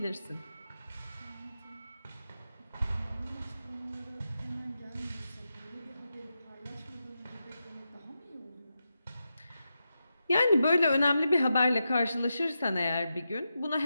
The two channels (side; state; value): both; inverted; correlation -0.89